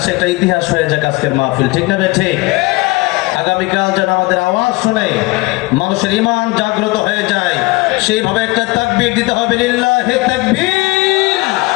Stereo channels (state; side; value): quieter; right; 23.3 dB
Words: একটা ইতিহাস হয়ে যাক আজকের মাহফিল, ঠিক না ঠিক? আগামীকাল যেন আমাদের আওয়াজ শুনে মানুষের ঈমান জাগ্রত হয়ে যায়, সেইভাবে একটা তাকবীর দিতে হবে। লিল্লাহি তাকবীর,